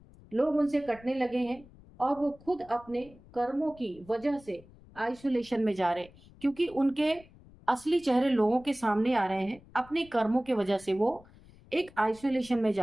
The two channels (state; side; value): noise; left; rumble, 24 dB below the sound